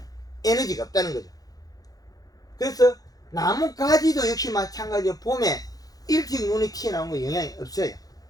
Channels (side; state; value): right; late; 0.18 ms